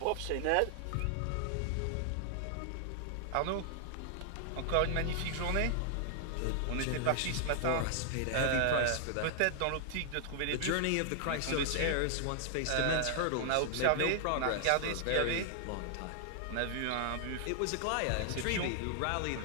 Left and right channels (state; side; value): different; both; correlation 0.00